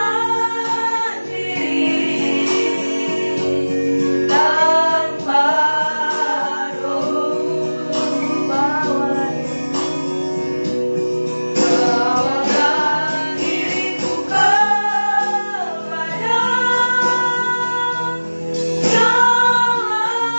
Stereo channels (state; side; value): inverted; both; correlation -1.00